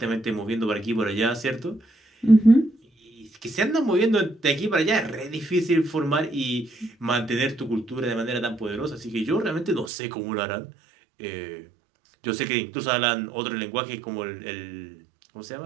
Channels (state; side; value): drops out; left; at 9.9 s